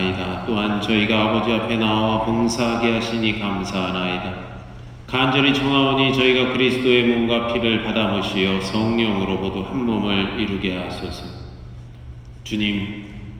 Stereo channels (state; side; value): identical; both; correlation 1.00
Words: 또한 저희가 아버지 앞에 나와 봉사하게 하시니 감사하나이다. 간절히 청하오니 저희가 그리스도의 몸과 피를 받아 모시어 성령으로 모두 한 몸을 이루게 하소서. 주님,